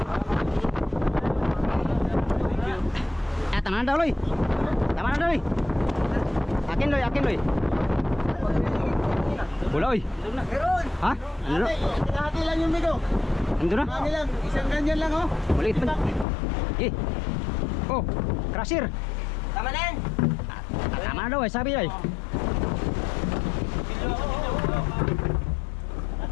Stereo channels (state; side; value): drops out; right; at 16.2 s